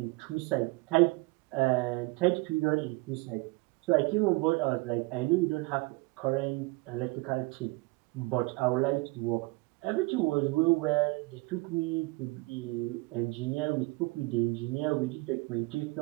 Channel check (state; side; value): quieter; left; 25.2 dB